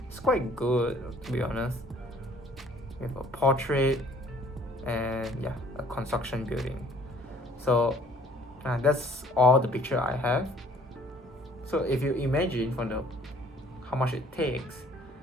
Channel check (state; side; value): normal; both; correlation 0.57